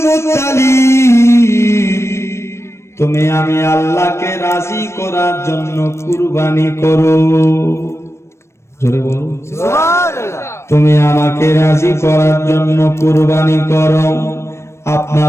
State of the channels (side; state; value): right; late; 0.13 ms